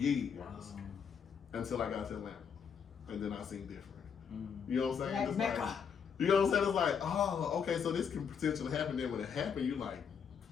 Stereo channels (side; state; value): right; quieter; 6.9 dB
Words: until I got to Atlanta. And then I seen different. You know what I'm saying? Like Mecca. You know what I'm saying? It's like, oh, okay, so this can potentially happen. Then when it happened, you like,